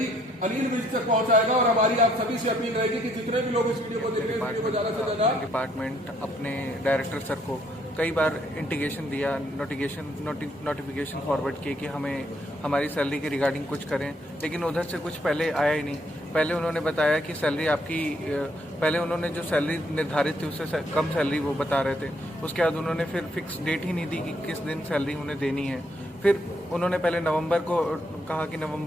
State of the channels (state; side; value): normal; both; correlation 0.70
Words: अनिल विज तक पहुंचाएगा। और हमारी आप सभी से अपील रहेगी कि जितने भी लोग इस वीडियो को देख रहे हैं, वीडियो को ज्यादा से ज्यादा डिपार्टमेंट अपने डायरेक्टर सर को कई बार इंटीग्रेशन दिया, नोटिफिकेशन फॉरवर्ड किए कि हमें हमारी सैलरी के रिगार्डिंग कुछ करें, लेकिन उधर से कुछ पहले आया ही नहीं। पहले उन्होंने बताया कि सैलरी आपकी, पहले उन्होंने जो सैलरी निर्धारित थी उससे कम सैलरी वो बता रहे थे। उसके बाद उन्होंने फिर फिक्स डेट ही नहीं दी कि किस दिन सैलरी उन्हें देनी है। फिर उन्होंने पहले नवंबर को कहा कि